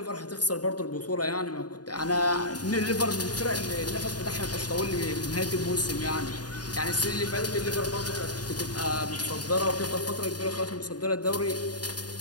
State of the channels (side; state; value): right; late; 0.69 ms